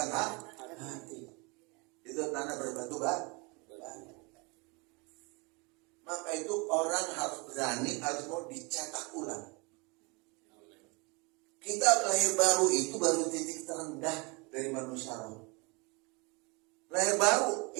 hati. Itu tanah berbatu batu. Maka itu orang harus berani, harus mau dicetak ulang. Kita lahir baru itu baru titik terendah dari manusia roh. Lahir baru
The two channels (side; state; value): left; quieter; 28.9 dB